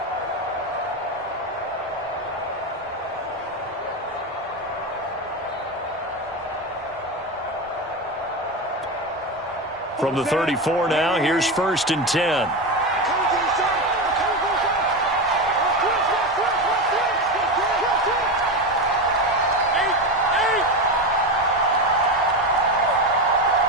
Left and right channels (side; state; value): both; normal; correlation 0.17